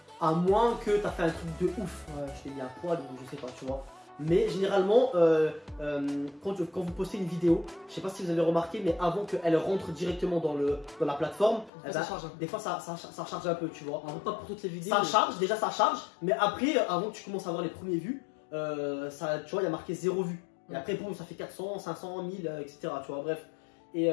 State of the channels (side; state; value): right; drops out; at 11.7 s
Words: À moins que tu as fait un truc de ouf. Je t'ai mis un poil ou je sais pas, tu vois. Mais généralement, quand vous postez une vidéo, je sais pas si vous avez remarqué, mais avant qu'elle rentre directement dans la plateforme, des fois ça charge un peu, tu vois. Alors, pas pour toutes les vidéos. Ça charge, déjà ça charge, mais après, avant que tu commences à avoir les premiers vues, tu vois, il y a marqué 0 vues. Et après, boum, ça fait 400, 500, 1000, etc. Tu vois, bref. Et